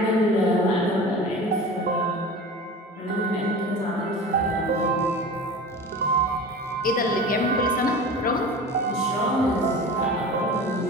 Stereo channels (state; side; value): normal; both; correlation 0.35